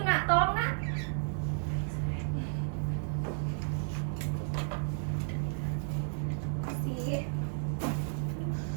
Nak, tolong, Nak.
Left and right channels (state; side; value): silent; left; digital silence